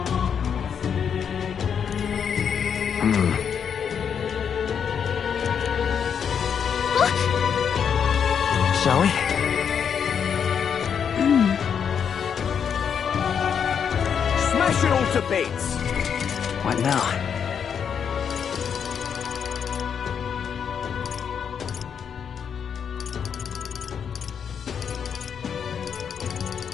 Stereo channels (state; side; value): quieter; right; 7.4 dB